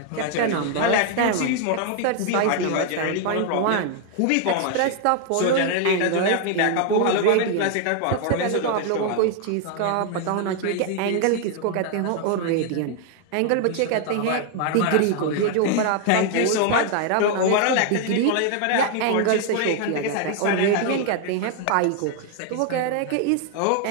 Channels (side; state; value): both; different; correlation 0.00